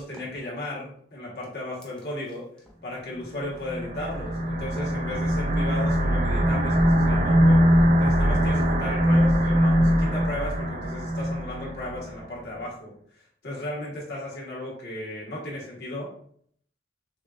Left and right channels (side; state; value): both; normal; correlation 0.84